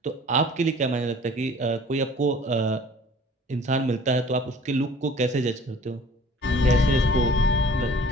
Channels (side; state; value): both; normal; correlation 0.49